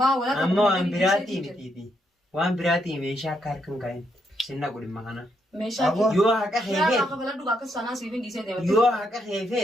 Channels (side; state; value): both; normal; correlation 0.77